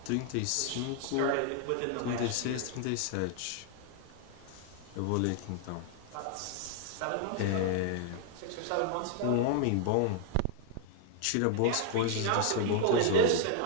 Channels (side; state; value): both; different; correlation 0.00